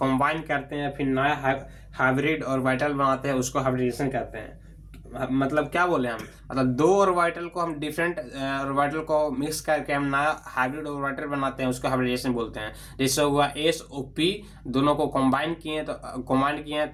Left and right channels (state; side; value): identical; both; correlation 1.00